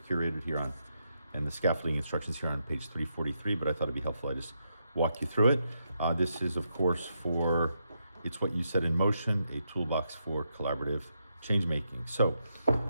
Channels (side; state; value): both; inverted; correlation -0.82